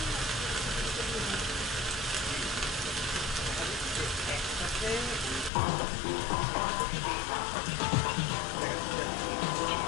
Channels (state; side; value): drops out; right; at 5.5 s